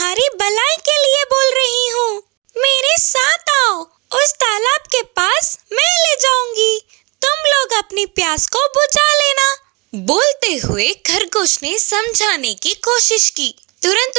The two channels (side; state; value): left; quieter; 27.6 dB